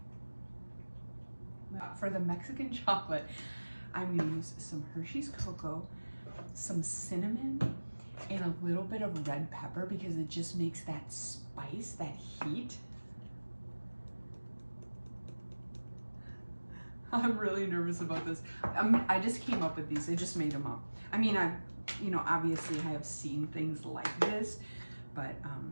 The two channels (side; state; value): both; inverted; correlation -1.00